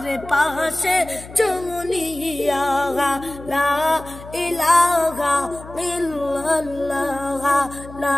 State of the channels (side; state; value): left; noise; hum, 16 dB below the sound